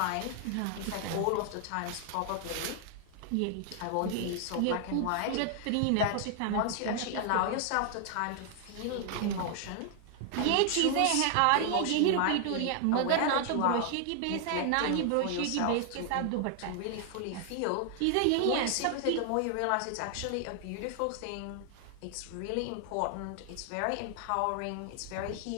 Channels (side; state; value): both; different; correlation 0.00